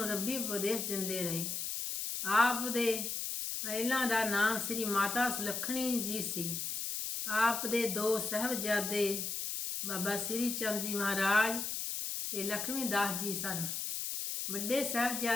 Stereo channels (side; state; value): left; noise; hiss, 3 dB below the sound